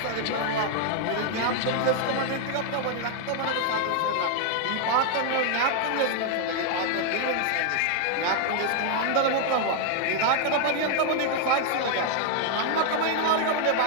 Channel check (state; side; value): different; both; correlation 0.00